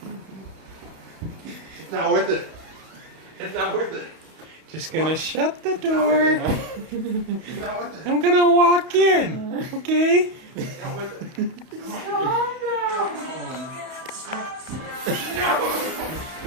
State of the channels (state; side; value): late; left; 31 ms